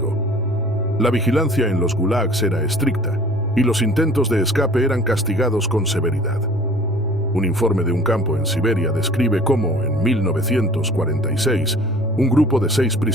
La vigilancia en los gulags era estricta y los intentos de escape eran castigados con severidad. Un informe de un campo en Siberia describe cómo, en 1946, un grupo de 6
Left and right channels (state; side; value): normal; both; correlation 0.48